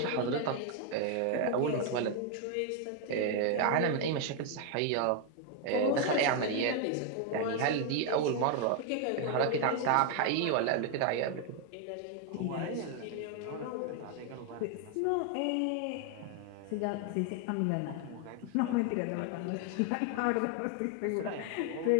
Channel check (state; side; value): different; both; correlation 0.00